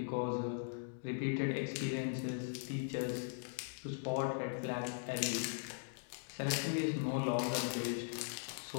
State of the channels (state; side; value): silent; right; digital silence